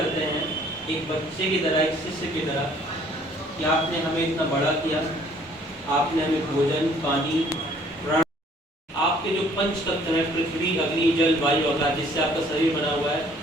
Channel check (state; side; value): normal; both; correlation 0.59